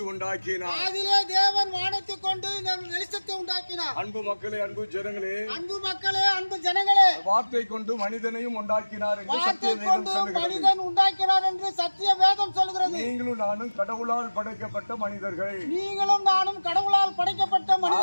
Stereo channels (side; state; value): both; inverted; correlation -1.00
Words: உண்டாக்கினார். ஆதியிலே தேவன் வானத்தை கொண்டு வெளிச்சத்தை உண்டாக்கினார். அன்பு மக்களே, அன்பு ஜனங்களே, அன்பு ஜனங்களே, வார்த்தை கொண்டு மனிதனையும் உண்டாக்கினார் என்று சத்திய வேதம் சொல்கிறது. மனிதன் உண்டாக்கினார் என்று சத்திய வேதம் சொல்கிறது. நீங்களும் நானும் கடவுளால் படைக்கப்பட்ட மனிதர்கள். நீங்களும் நானும் கடவுளால் படைக்கப்பட்ட